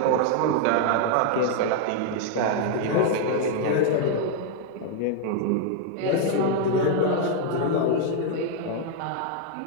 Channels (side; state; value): both; different; correlation 0.00